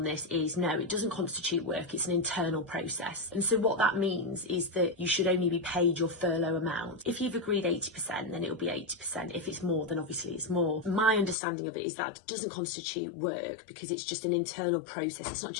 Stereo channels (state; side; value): drops out; right; at 11.4 s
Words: this is no, it doesn't constitute work, it's an internal process. And so what that means is that you should only be paid your furlough amount. If you've agreed 80%, then it'll be 80%. If it's more, then obviously it's more. My understanding of it is that it doesn't constitute work because it's just an internal process. It's not